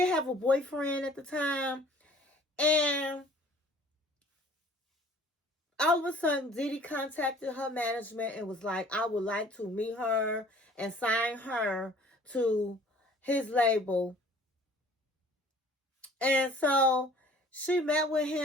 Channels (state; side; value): normal; both; correlation 0.52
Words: have a boyfriend at the time. And all of a sudden, Diddy contacted her management and was like, I would like to meet her and sign her to his label. And so she met with